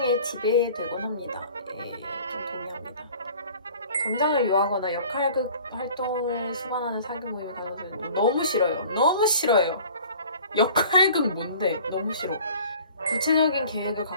지배되곤 합니다. 좀 동의합니다. 감정을 유하거나 역할극 활동을 수반하는 사교 모임을 가져서 너무 싫어요. 역할극 뭔데? 너무 싫어. 구체적인 계획을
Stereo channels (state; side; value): inverted; both; correlation -0.47